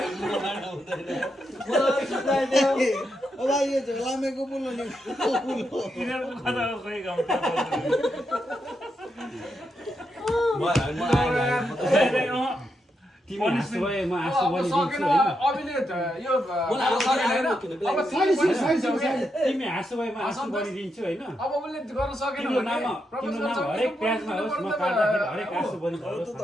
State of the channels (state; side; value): normal; both; correlation 0.83